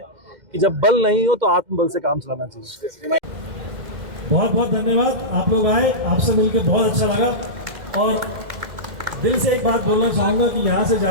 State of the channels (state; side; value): late; left; 2.1 ms